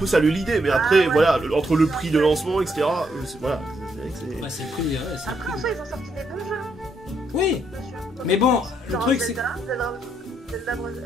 saluer l'idée, mais après, Ah ouais. voilà, entre le prix de lancement, etc. Voilà. Ouais, c'est pris, ouais, c'est Après, en pris. soi, ils ont sorti des bons jeux, hein, Oui, monsieur. mais bon, le Genre truc c'est. Zelda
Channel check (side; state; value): both; normal; correlation 0.76